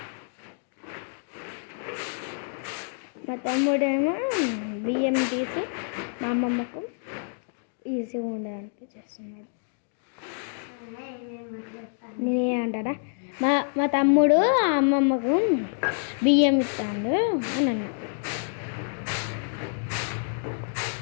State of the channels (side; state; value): right; silent; digital silence